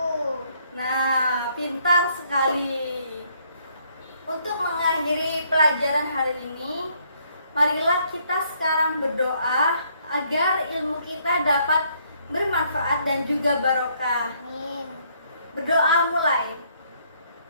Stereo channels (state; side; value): inverted; both; correlation -0.68